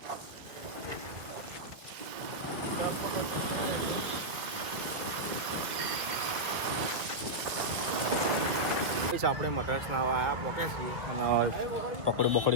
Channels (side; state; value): left; late; 1.8 ms